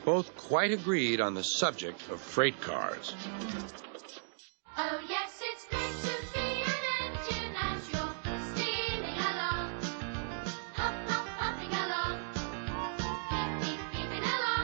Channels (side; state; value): left; silent; digital silence